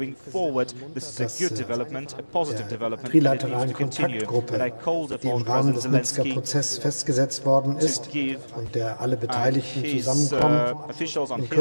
dass der trilateralen Kontaktgruppe, die im Rahmen des Minsker Prozesses festgesetzt worden ist und der alle Beteiligten zusammenkommen, in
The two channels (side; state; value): both; inverted; correlation -1.00